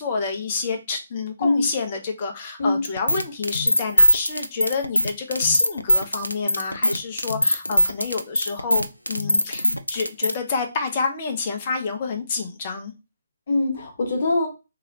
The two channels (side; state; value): both; inverted; correlation -0.87